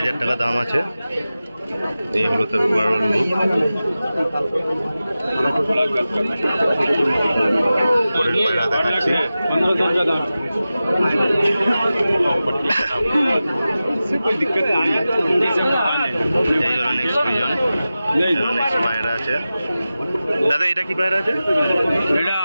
টাকা দাম আছে এই হলো তার ওভারঅল লুক পরের পায়রা দেখাচ্ছি 1500 का दाम कोई दिक्कत नहीं है এই হলো নেক্সট পিজন এই হলো নেক্সট পায়রা আছে দাদা এটা কি পায়রা আছে এটা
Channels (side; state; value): both; inverted; correlation -0.95